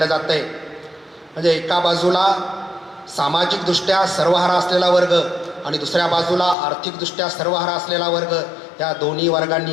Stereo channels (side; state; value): right; drops out; at 6.6 s